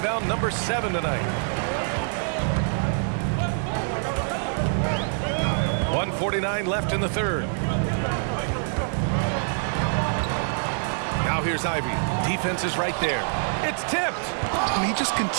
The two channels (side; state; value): left; silent; digital silence